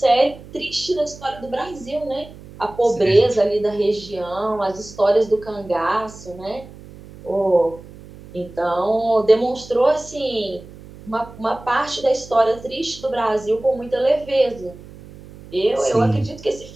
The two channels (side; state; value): right; noise; hum, 18 dB below the sound